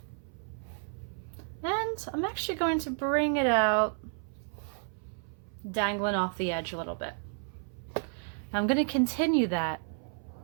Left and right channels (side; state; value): left; silent; 57 dB below the other